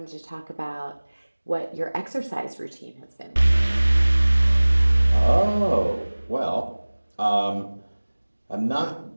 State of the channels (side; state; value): both; inverted; correlation -1.00